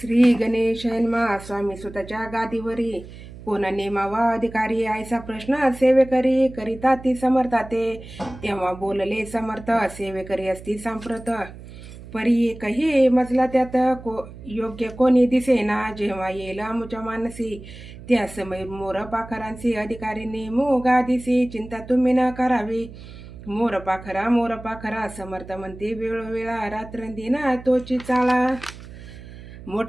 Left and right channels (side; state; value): right; noise; hum, 16 dB below the sound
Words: गणेशाय नमः. स्वामी सुताच्या गादीवरी कोण नेमावा अधिकारी आयसा प्रश्न सेवेकरी करिता ती समर्थाते. तेव्हा बोलले समर्थ सेवेकरी असती सांप्रत. परी एकही मजला त्यात योग्य कोणी दिसेना. जेव्हा येईल आमुच्या मानसी त्या समय मोर पाखरांसी अधिकारी नेमू गादीसी. चिंता तुम्ही न करावी मोर पाखरा समर्थ म्हणते वेळोवेळा रात्रंदिना तोची चाळा.